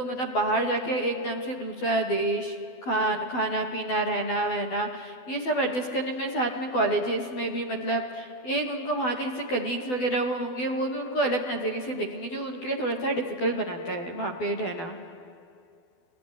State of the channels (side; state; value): right; late; 12 ms